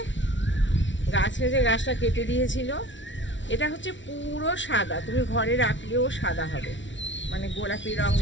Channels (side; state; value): right; late; 0.55 ms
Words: গাছটা কেটে দিয়েছিল। এটা হচ্ছে পুরো সাদা, তুমি ঘরে রাখলেও সাদা হবে, মানে গোলাপি রং